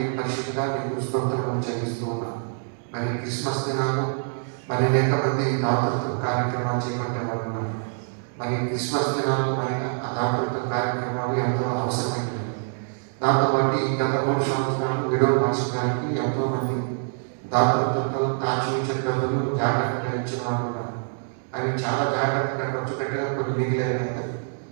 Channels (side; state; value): left; silent; 60 dB below the other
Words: పరిశుద్ధిగా మీకు స్తోత్రం చెల్లిస్తూ ఉన్నాం. మరి క్రిస్మస్ దినాలు మరి అనేక మంది దాతృత్వ కార్యక్రమాలు చేపట్టేవారు ఉన్నారు. మరి క్రిస్మస్ దినాలు ఆయన ఆ దాతృత్వ కార్యక్రమాలు ఎంతో అవసరమైనవి. దాంతో పాటు ఈ గత 3 సంవత్సరాలు విడవ మార్చడానికి ఎంతో మంది దాతృత్వంతో ఆచరించిన డబ్బులు జాగ్రత్తగా ఇచ్చిన వారు ఉన్నారు. అవి చాలా జాగ్రత్తగా ఖర్చు పెట్టడం కొన్ని మిగిలేదు.